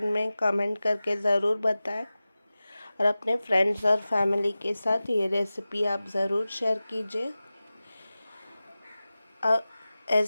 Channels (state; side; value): inverted; both; correlation -0.96